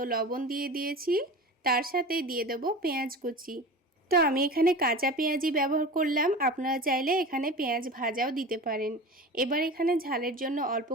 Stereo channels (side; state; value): both; normal; correlation 0.33